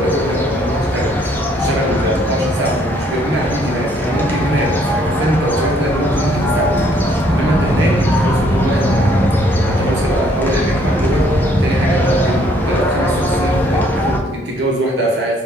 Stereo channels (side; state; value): both; normal; correlation 0.65